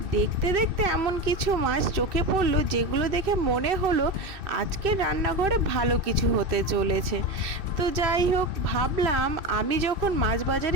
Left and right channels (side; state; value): left; late; 2.6 ms